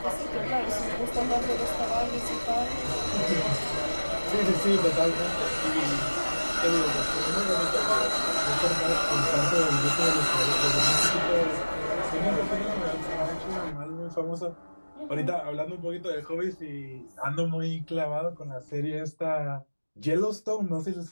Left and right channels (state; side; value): inverted; both; correlation -1.00